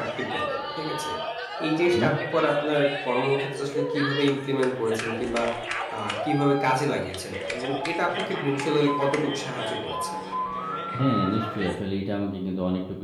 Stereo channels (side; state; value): both; identical; correlation 1.00